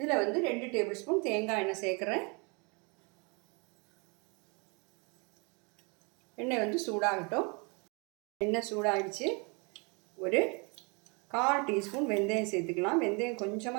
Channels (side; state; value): left; quieter; 32.1 dB